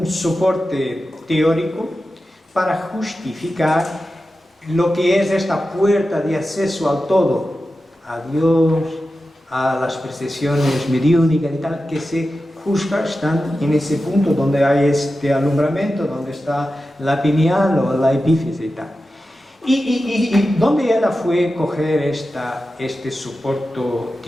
soporte teórico para justificar lo que es esta puerta de acceso al todo, a Dios, a las percepciones mediúnicas y tal, que se juzga están en ese punto donde hay este alumbramiento, donde está la pineal o la epífisis y tal. Y ¿dónde ella fue coger este soporte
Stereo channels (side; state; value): both; normal; correlation 0.92